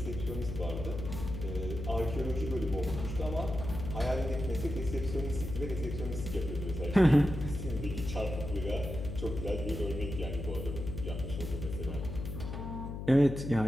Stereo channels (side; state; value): left; noise; hum, 6 dB below the sound